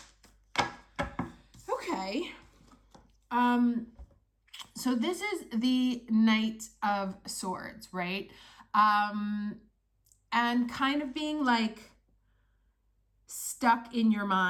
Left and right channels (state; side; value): identical; both; correlation 1.00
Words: Okay. So this is the Knight of Swords, right? And kind of being like stuck in your